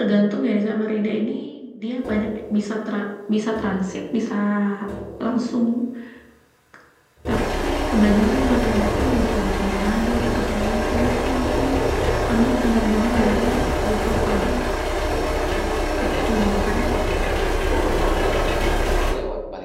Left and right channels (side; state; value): both; identical; correlation 1.00